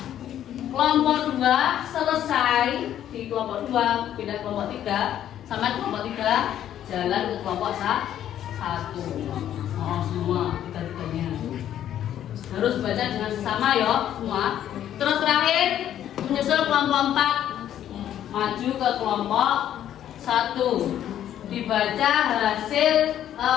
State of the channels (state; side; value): quieter; right; 11.0 dB